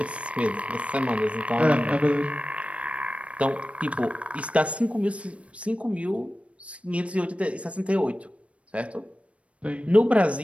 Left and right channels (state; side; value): late; left; 0.063 ms